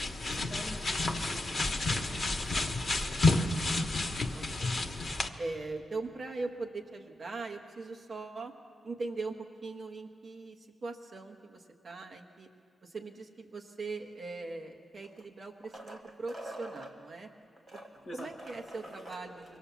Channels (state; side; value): normal; both; correlation 0.86